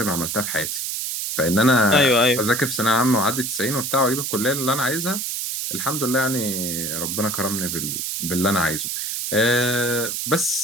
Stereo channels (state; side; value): noise; right; hiss, 3 dB below the sound